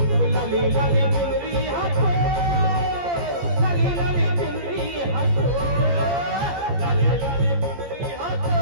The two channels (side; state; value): left; late; 14 ms